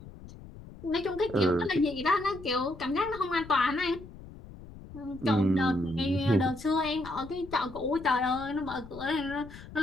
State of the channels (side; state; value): left; noise; rumble, 16 dB below the sound